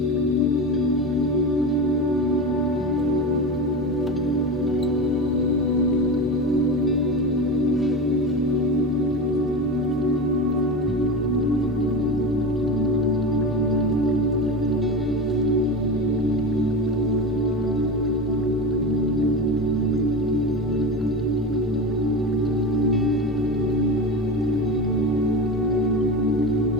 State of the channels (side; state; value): both; normal; correlation 0.24